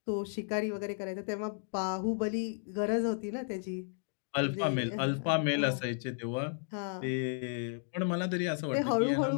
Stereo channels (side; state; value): right; silent; digital silence